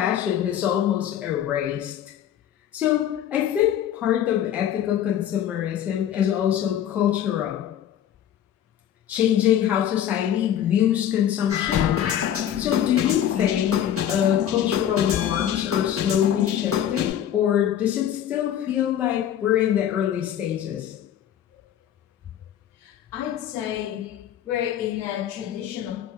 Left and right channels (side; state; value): right; quieter; 10.4 dB